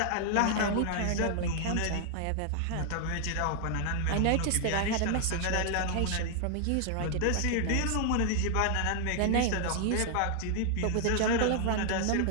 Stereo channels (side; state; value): both; different; correlation 0.00